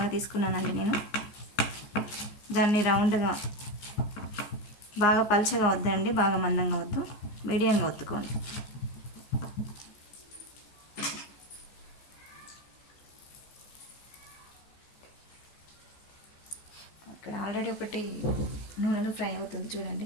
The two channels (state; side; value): late; right; 14 ms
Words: తీసుకున్నానండి నేను. దాన్ని రౌండ్గా, బాగా పల్చగా వద్దండి, బాగా మందంగా వద్దు, మీడియంగా ఒత్తుకోండి. ఇక్కడ ఆల్రెడీ ఒకటి నూనెలో ఫ్రై అవుతుంది